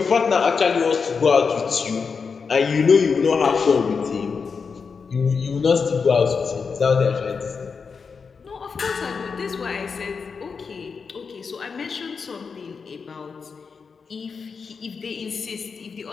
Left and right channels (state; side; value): quieter; right; 5.4 dB